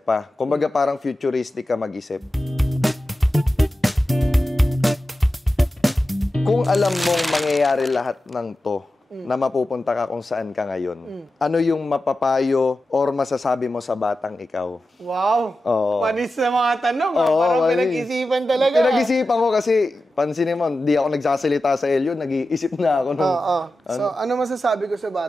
pa? Kumbaga parang futuristic ka mag-isip. Kung alam mong mangyayari lahat ng to, na mapupunta ka kung saan ka ngayon, ano yung mapapayo or masasabi mo sa batang ikaw? Wow! Oo. Panis na mga tanong. Parang pinag-isipan talaga. Pinag-isipan ko kasi, pansinin mo, di ako nagsasalita sa Elio, nag-iisip na ako. So, ano masasabi ko sa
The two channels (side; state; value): both; normal; correlation 0.93